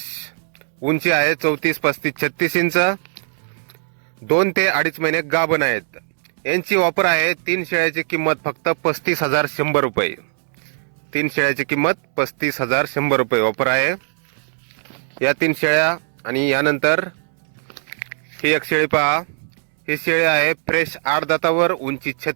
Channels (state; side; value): silent; left; 59 dB below the other